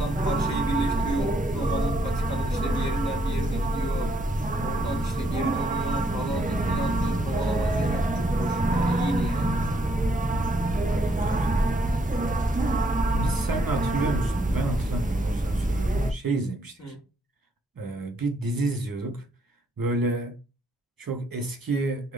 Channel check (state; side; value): normal; both; correlation 0.72